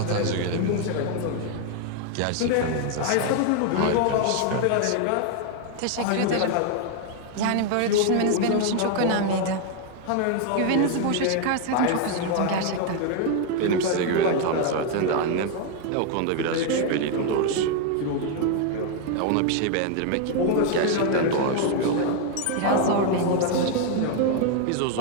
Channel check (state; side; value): different; both; correlation 0.01